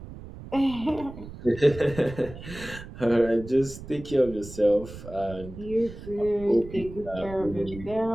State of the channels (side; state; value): right; noise; rumble, 14 dB below the sound